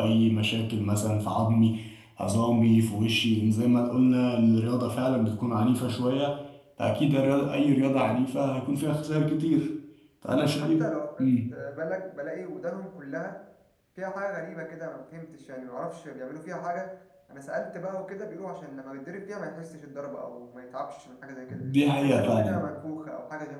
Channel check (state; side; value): identical; both; correlation 1.00